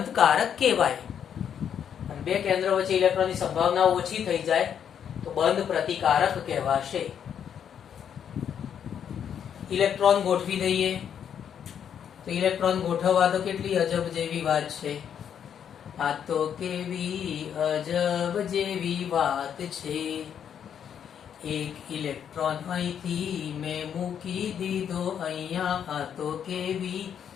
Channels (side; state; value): right; quieter; 8.5 dB